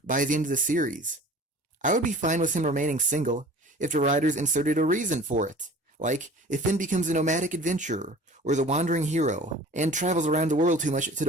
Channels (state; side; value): normal; both; correlation 0.44